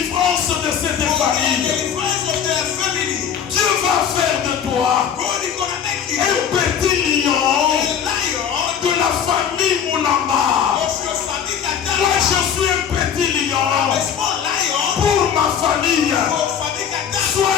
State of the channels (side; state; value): right; quieter; 8.2 dB